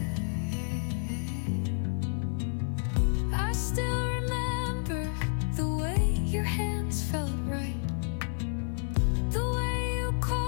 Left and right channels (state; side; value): silent; right; 56 dB below the other